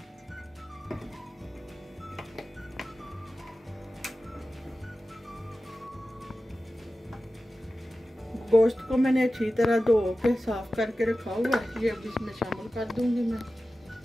गोश्त को मैंने अच्छी तरह धो के साफ करके रखा हुआ है, ये अब इसमें शामिल कर दूंगी मैं।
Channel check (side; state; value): both; normal; correlation 0.95